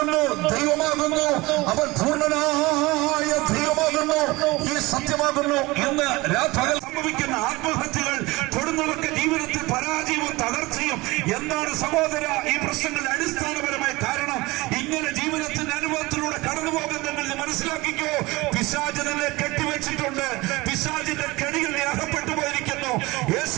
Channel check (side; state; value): left; quieter; 21.8 dB